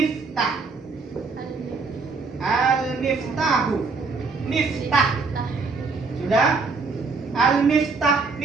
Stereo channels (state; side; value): quieter; left; 4.4 dB